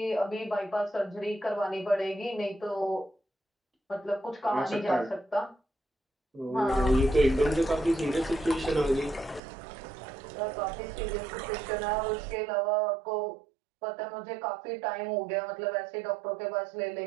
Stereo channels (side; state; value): left; drops out; at 9.4 s